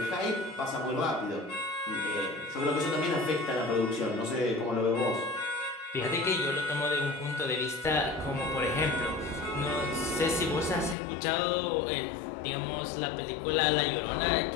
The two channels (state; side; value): drops out; right; at 11.0 s